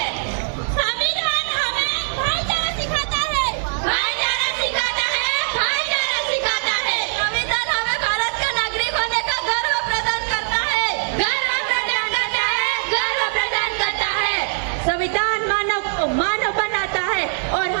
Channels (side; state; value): left; silent; 65 dB below the other